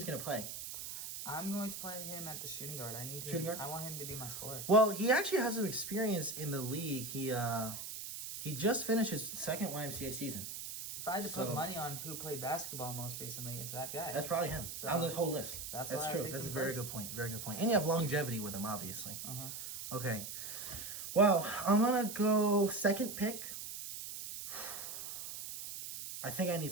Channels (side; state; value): right; noise; hiss, 7 dB below the sound